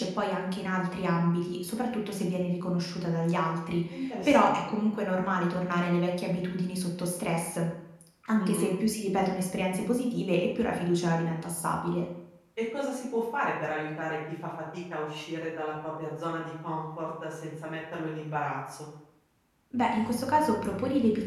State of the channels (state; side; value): identical; both; correlation 1.00